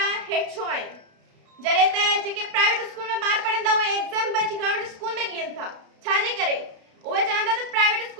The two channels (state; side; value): late; left; 32 ms